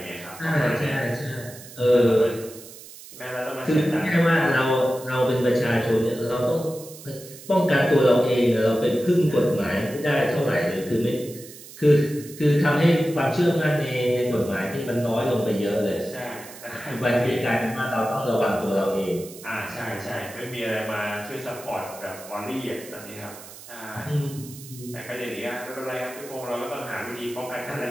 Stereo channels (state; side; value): noise; right; hiss, 17 dB below the sound